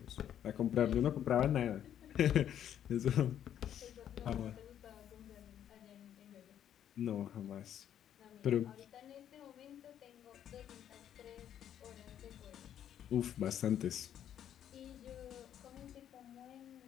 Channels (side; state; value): right; quieter; 10.1 dB